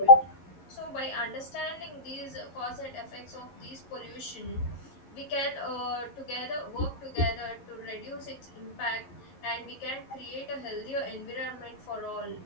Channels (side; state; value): right; late; 11 ms